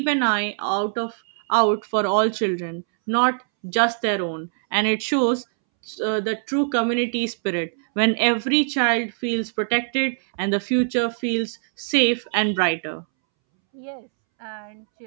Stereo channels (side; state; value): left; silent; 64 dB below the other